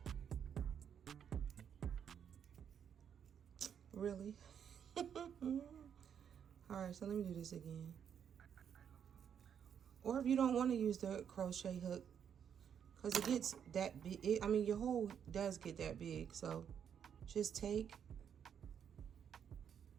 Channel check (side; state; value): left; quieter; 8.2 dB